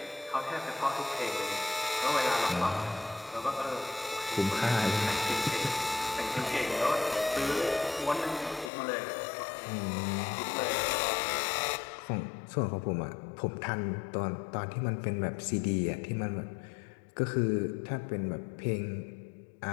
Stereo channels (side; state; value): right; drops out; at 8.7 s